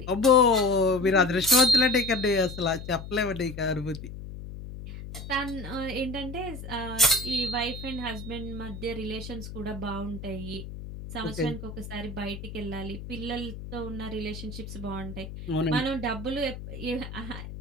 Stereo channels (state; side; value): noise; left; hum, 10 dB below the sound